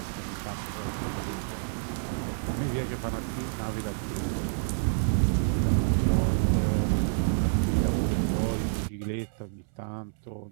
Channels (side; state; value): left; silent; 59 dB below the other